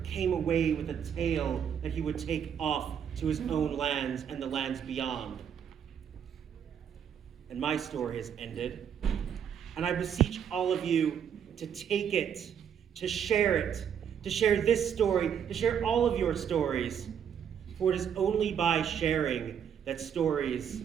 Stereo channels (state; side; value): quieter; left; 8.3 dB